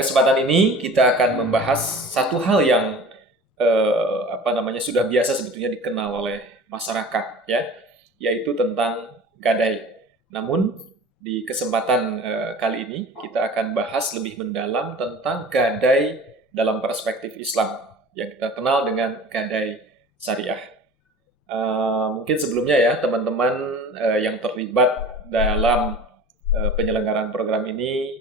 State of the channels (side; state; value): both; normal; correlation 0.41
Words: ini kita akan membahas satu hal yang sudah biasa sebetulnya dikenal oleh masyarakat, ya, yaitu tentang gadai. Namun di kesempatan kali ini kita akan bahas lebih mendalam tentang gadai dalam perspektif Islam yang kita kenal dengan gadai syariah. Mungkin sebelumnya ya teman-teman yang terlibat dalam penyelenggaraan program ini